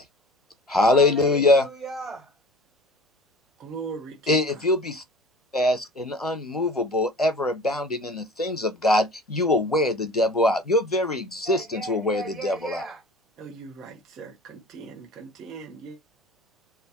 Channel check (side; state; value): both; normal; correlation 0.42